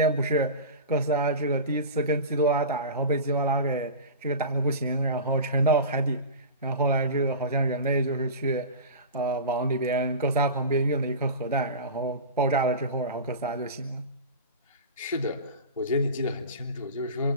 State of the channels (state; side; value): inverted; both; correlation -0.30